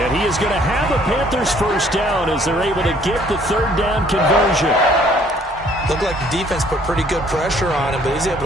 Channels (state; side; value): normal; both; correlation 0.60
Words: he is going to have a Panthers first down as they're able to get the 3rd down conversion. Looked like the defense put pretty good pressure on him, but he's